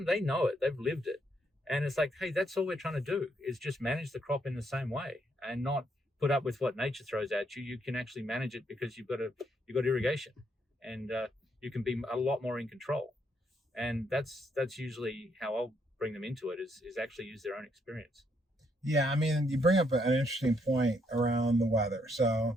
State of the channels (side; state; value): both; normal; correlation 0.74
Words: they know it, they've lived it. And it's like, hey, that's all we're trying to do, is just manage the crop in the same way and not put up with what nature throws at you. You can actually manage it because you've got irrigation, and you can be a lot more in control. And that's usually how I'll bring them into it, is actually use their own experience. Yeah, you bring up an interesting point around the weather. So,